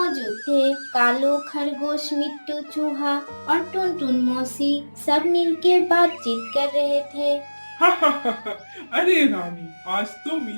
थे। कालो, खरगोश, मिट्टू, चूहा और टुनटुन मौसी सब मिलकर बातचीत कर रहे थे। अरे रानी, आज तो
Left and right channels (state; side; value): inverted; both; correlation -1.00